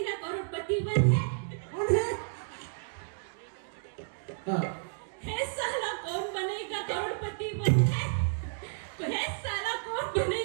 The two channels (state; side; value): silent; left; digital silence